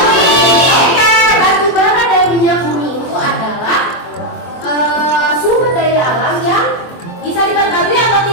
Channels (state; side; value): late; right; 24 ms